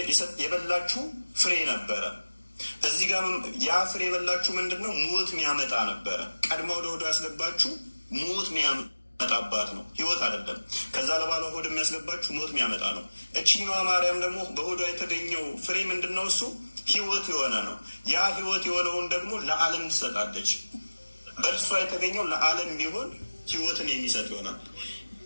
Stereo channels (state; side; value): inverted; both; correlation -1.00